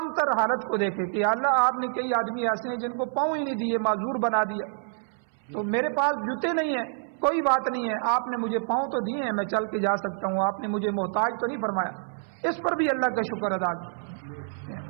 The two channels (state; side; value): silent; left; 60 dB below the other